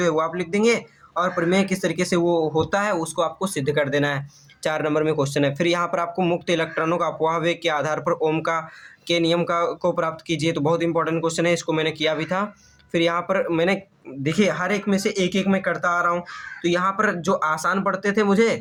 है वो आप लिख देंगे और प्रमेय किस तरीके से वो होता है उसको आपको सिद्ध कर देना है। 4 नंबर में क्वेश्चन है। फिर यहाँ पर आपको मुक्त इलेक्ट्रॉनों का अपवाह वेग के आधार पर ओम के नियम को प्राप्त कीजिए। तो बहुत इंपॉर्टेंट क्वेश्चन है, इसको मैंने किया भी था। फिर यहाँ पर मैंने देखिए हर एक में से एक एक मैं करता आ रहा हूँ, तो यहाँ पर जो आसान पढ़ते थे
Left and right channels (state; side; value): identical; both; correlation 1.00